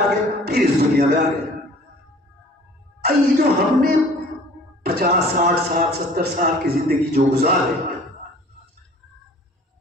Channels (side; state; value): both; normal; correlation 0.49